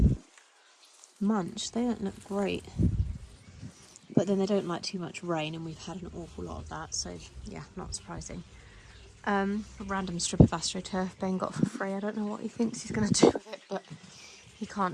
munched. They don't look great, but then they don't like too much rain, and we've had an awful lot of that, so yeah, not surprising. A random strip of AstroTurf Ben got for free. I don't know what he thinks he's going to do with it, but he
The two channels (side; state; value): both; identical; correlation 1.00